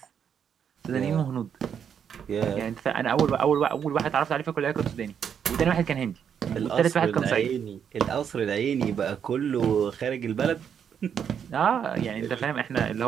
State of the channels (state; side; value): quieter; left; 7.9 dB